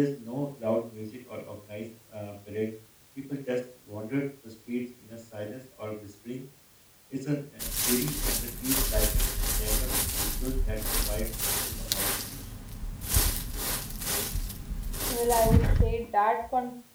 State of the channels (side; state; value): both; identical; correlation 1.00